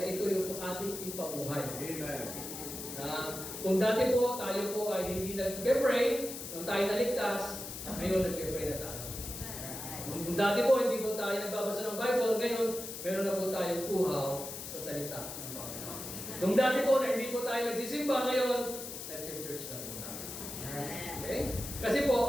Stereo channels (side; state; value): left; noise; hiss, 8 dB below the sound